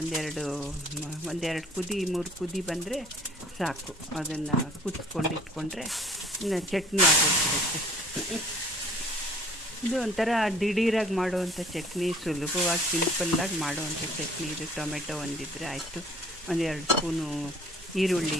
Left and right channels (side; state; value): both; normal; correlation 0.53